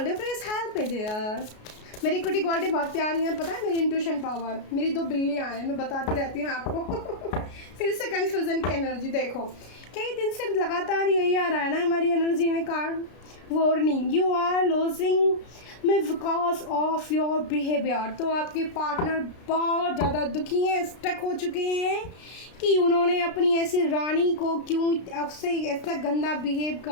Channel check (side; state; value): right; late; 33 ms